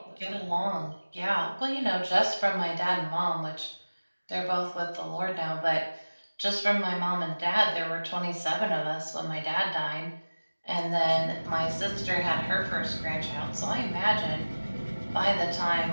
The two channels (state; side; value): inverted; both; correlation -1.00